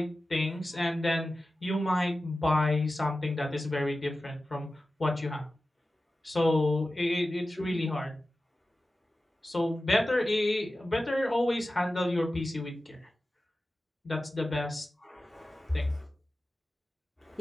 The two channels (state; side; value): normal; both; correlation 0.94